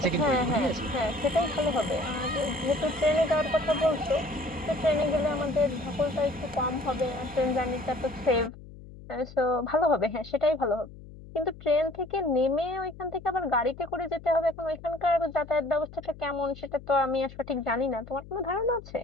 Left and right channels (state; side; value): noise; left; hum, 17 dB below the sound